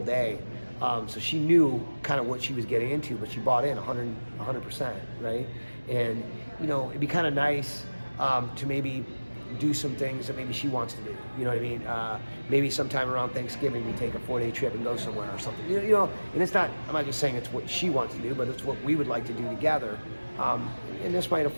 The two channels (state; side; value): inverted; both; correlation -1.00